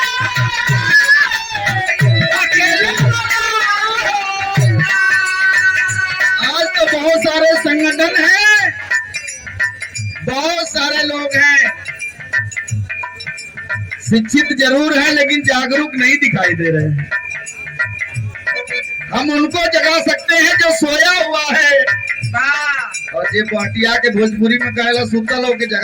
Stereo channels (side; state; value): both; identical; correlation 1.00